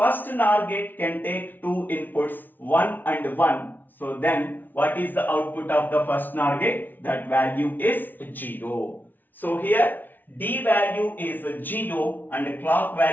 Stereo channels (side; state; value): right; late; 0.087 ms